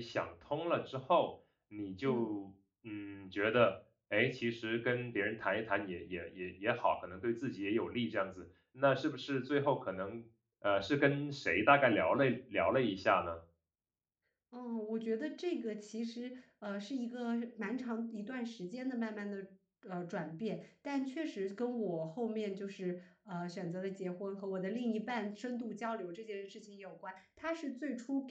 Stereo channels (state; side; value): identical; both; correlation 1.00